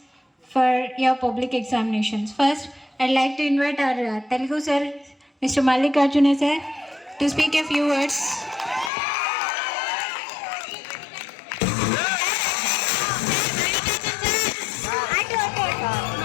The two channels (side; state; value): right; drops out; at 8.9 s